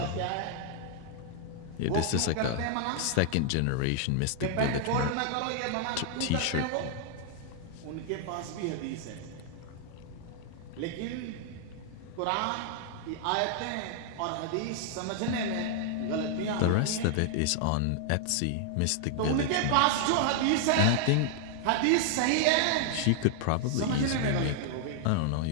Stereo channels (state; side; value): different; both; correlation 0.00